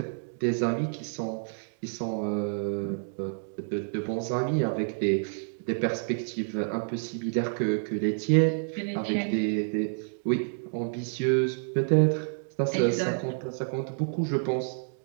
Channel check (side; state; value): left; silent; digital silence